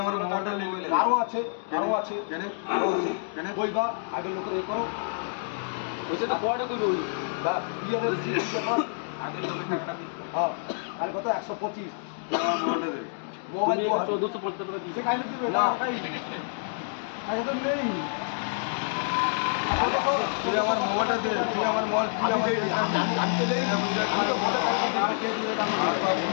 আমার মোবাইলটা নিয়ে কারো আছে কেন কেন কইবা আগে লোকের এ করো ওইটা তো পরে কইবে ওই বা বিয়ের রিসিপ্ট ব্যাপার আগের লোকের টাকাটা দিতে হ্যাঁ তাহলে কত 125 আমার মোবাইলটা দে মোবাইল দেওয়া হয় 1450 টাকা দিছে। খাইলে দিবে না আগে তো নেই তুই আমার মোবাইলটা দে তুই আমার মোবাইল তুই আমার আমি তো দেই আমি তো মোটা আর বাবু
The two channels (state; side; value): silent; right; digital silence